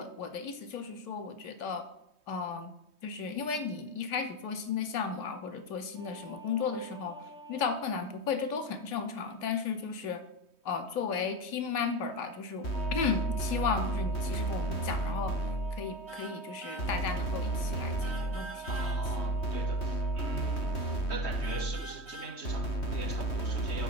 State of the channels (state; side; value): late; right; 3.1 ms